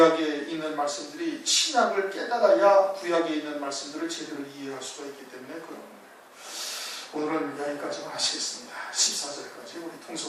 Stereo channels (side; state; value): both; identical; correlation 1.00